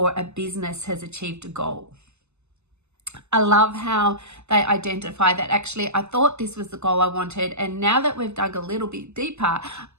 a business has achieved a goal. I love how they identify that actually I thought this was the goal I wanted, and now that we've dug a little bit deeper,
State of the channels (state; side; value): late; left; 0.82 ms